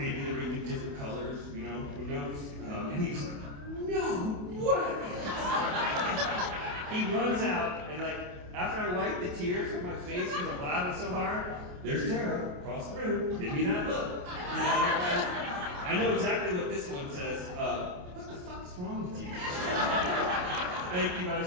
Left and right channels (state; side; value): late; left; 28 ms